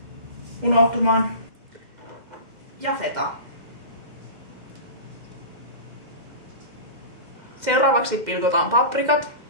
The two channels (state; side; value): late; left; 2.1 ms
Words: unohtumaan. Ja feta. Seuraavaksi pilkotaan paprikat.